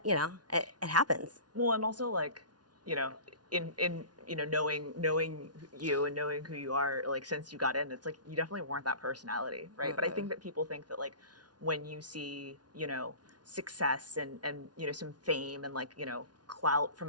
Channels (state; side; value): late; left; 0.69 ms